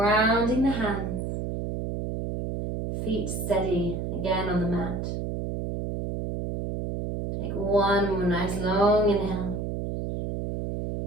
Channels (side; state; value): right; noise; hum, 4 dB below the sound